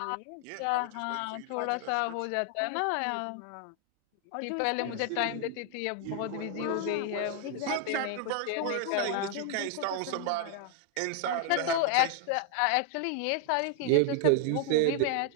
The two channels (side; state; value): both; different; correlation 0.00